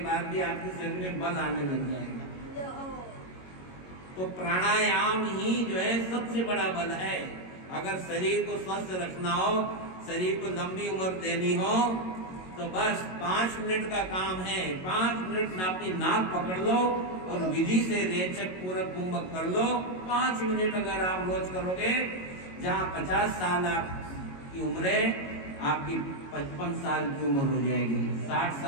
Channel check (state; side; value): late; right; 22 ms